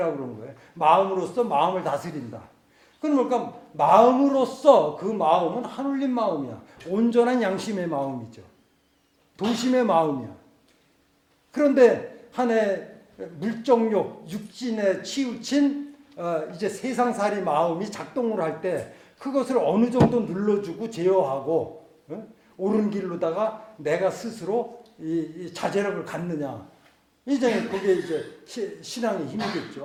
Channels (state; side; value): identical; both; correlation 1.00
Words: 그런 거예요. 마음으로써 마음을 다스린다. 그럼 뭘까? 마음으로써 그 마음은 하늘린 마음이야. 온전한 양심의 마음이죠. 도심의 마음이야. 그런데 한해 물정욕, 육신에 치우친 이제 세상살이 마음이 작동을 할 때 그것을 어느 정도 눌러주고 제어하고 옳은 길로다가 내가 스스로 이 자제력을 갖느냐. 이제 그게 이제 신앙의